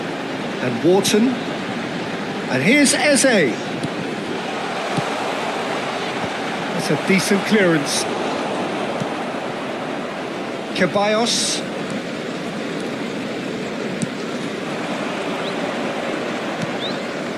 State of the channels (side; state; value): both; identical; correlation 1.00